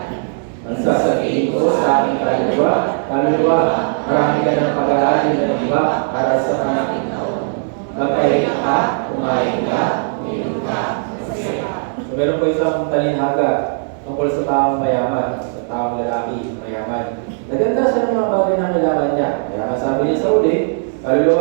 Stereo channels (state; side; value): silent; left; digital silence